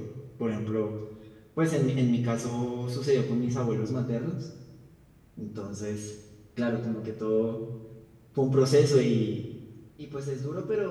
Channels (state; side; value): identical; both; correlation 1.00